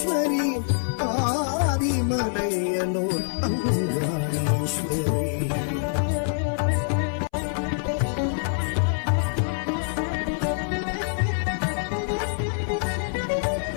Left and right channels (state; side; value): silent; right; 62 dB below the other